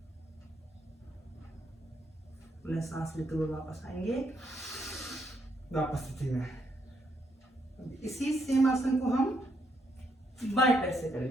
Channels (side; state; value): both; normal; correlation 0.76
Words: पुनः सांस लेते हुए वापस आएंगे, वापस स्थिति में। इसी सेम आसन को हम बाएं पैर से